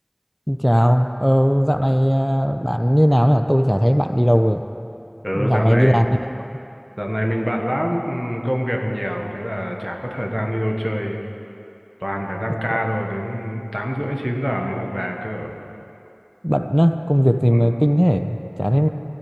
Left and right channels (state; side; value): identical; both; correlation 1.00